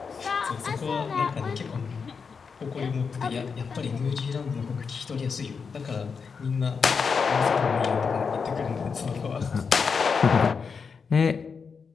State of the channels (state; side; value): quieter; right; 5.6 dB